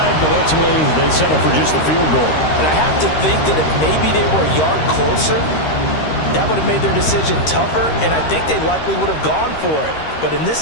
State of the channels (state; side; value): late; right; 13 ms